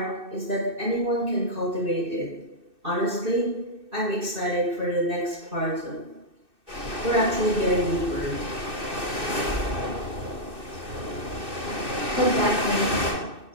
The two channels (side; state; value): left; late; 2.6 ms